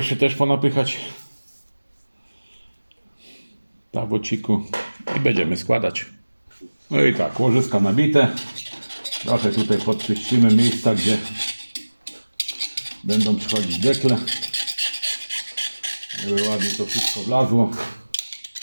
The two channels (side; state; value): both; inverted; correlation -1.00